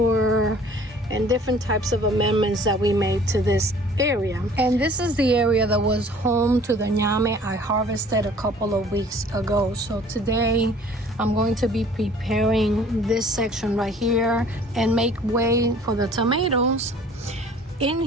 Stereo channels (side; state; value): both; normal; correlation 0.51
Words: and different types of amendments that we made to this area. And this is the area that was home to the ñame I harvested a couple of weeks ago. So today I'm going to be preparing this section right here and make way for the tomatoes. In